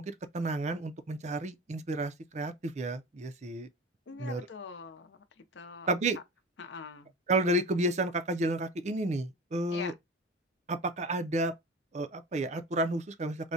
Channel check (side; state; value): both; normal; correlation 0.32